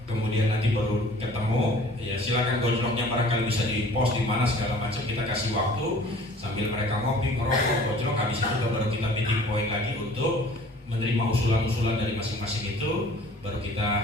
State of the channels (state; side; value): normal; both; correlation 0.49